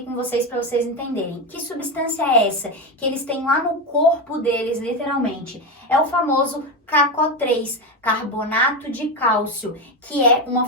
com vocês para vocês entenderem. Que substância é essa? Que eles têm lá no corpo deles, literalmente. É o famoso CaCO3, carbonato de cálcio, que é uma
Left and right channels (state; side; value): normal; both; correlation 0.15